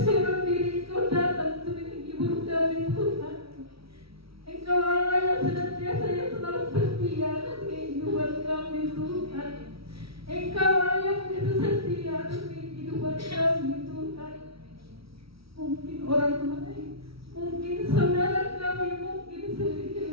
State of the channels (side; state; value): left; late; 0.76 ms